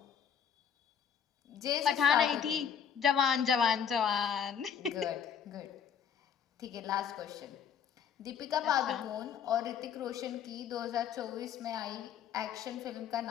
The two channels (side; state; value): right; quieter; 7.8 dB